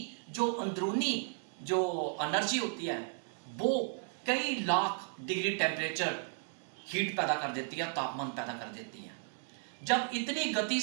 जो अंदरूनी जो एनर्जी होती है वो कई लाख डिग्री टेम्परेचर हीट पैदा कर देती है, तापमान पैदा कर देती है। जब इतनी गति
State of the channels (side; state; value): left; silent; 55 dB below the other